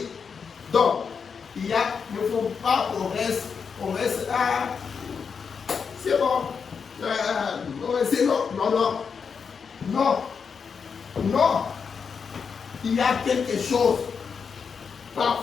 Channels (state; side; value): quieter; right; 6.0 dB